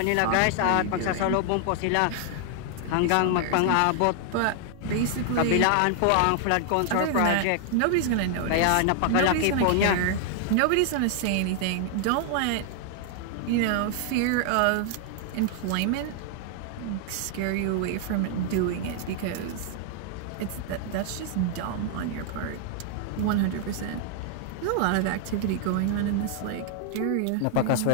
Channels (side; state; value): both; different; correlation 0.00